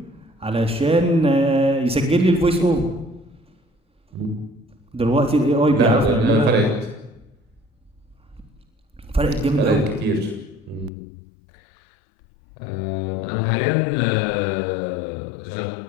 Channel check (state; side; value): drops out; right; at 10.9 s